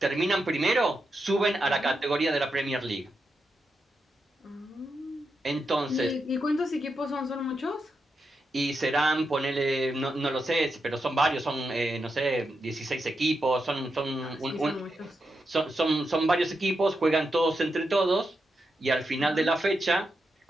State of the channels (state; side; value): normal; both; correlation 0.86